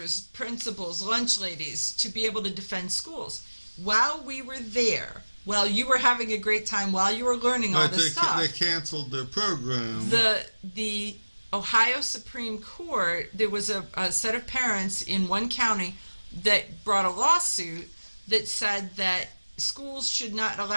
principals, lunch ladies, to be able to defend schools. While we were there, while you were having a great time, while you were learning all this stuff, they canceled their program. The Ohio Supreme Court, there was a set of parents in one county that brought a lawsuit that said that schools should not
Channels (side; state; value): both; inverted; correlation -1.00